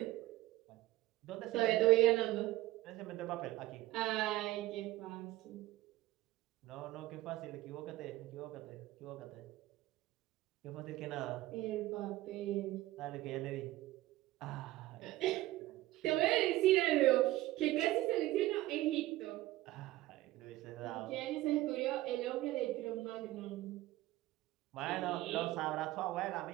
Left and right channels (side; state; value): left; quieter; 16.9 dB